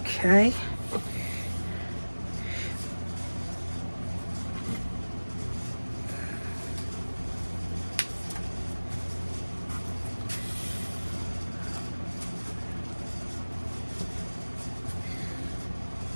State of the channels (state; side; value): inverted; both; correlation -1.00